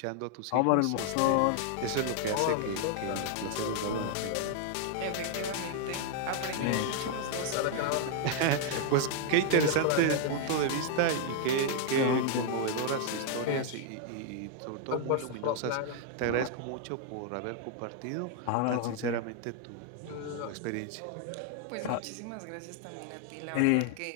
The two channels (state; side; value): different; both; correlation 0.00